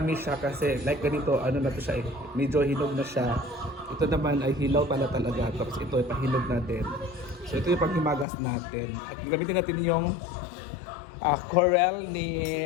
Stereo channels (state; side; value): drops out; right; at 8.2 s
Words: siya kasi like ganito, na to siya medyo hinog na siya. Ito naman ay hilaw pala talaga, tapos ito ay pahinog natin. So ito yung panghimagas natin. At gamitin natin yung corel